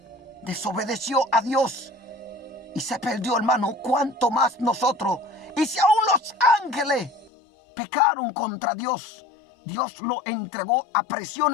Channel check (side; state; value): right; drops out; at 7.3 s